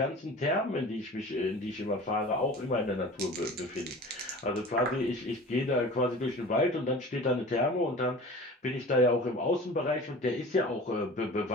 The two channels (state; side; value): normal; both; correlation 0.39